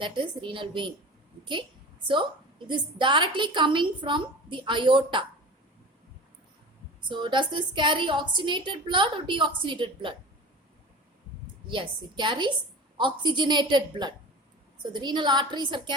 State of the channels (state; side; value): normal; both; correlation 0.36